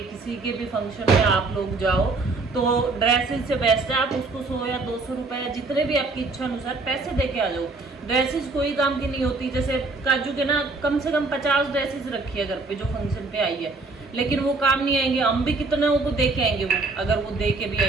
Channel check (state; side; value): quieter; left; 3.6 dB